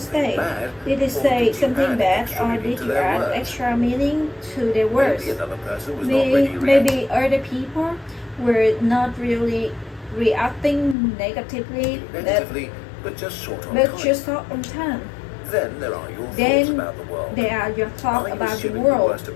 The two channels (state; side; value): drops out; right; at 11.0 s